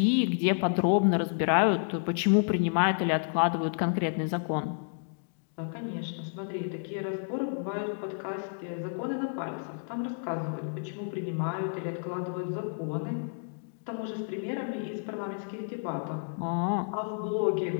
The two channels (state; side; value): silent; right; 58 dB below the other